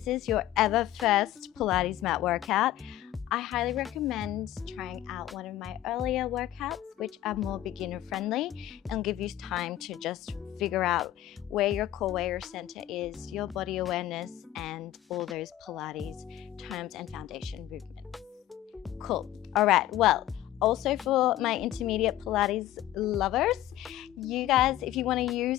is your ever first Pilates mat workout, I highly recommend trying out one of my earlier workouts, which are more beginner friendly and give you time to just figure out where your core, where your center is, your body awareness, and all those Pilates terms and foundation movements. Cool. All right. Well, also for my intermediate Pilates lovers, you guys, if you want to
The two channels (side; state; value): right; quieter; 13.7 dB